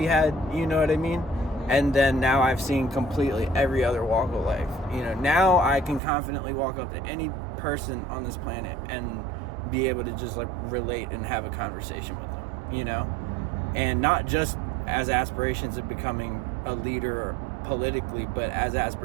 had, you know what I mean? And then now I've seen completely every other walk of life. Now I can confidently walk up to any person on this planet and be able to just, like, relate and have a conversation with them, And not just as aspirations of becoming a leader politically, but as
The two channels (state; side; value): drops out; left; at 6.0 s